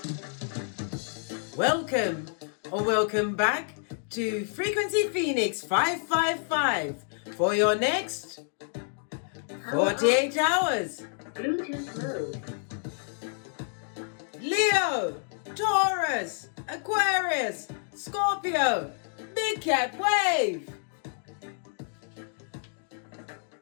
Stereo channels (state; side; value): silent; right; 59 dB below the other